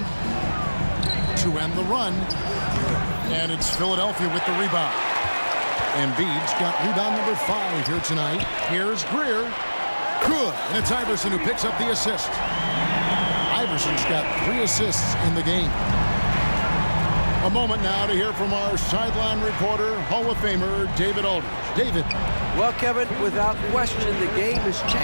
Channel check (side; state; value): both; inverted; correlation -1.00